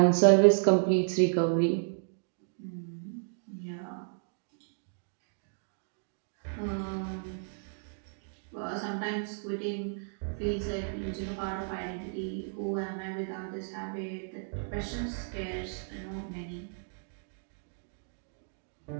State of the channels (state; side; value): silent; left; digital silence